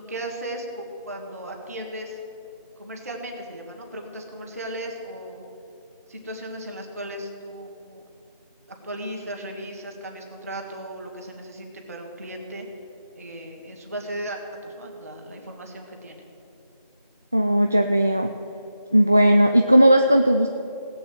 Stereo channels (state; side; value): inverted; both; correlation -0.88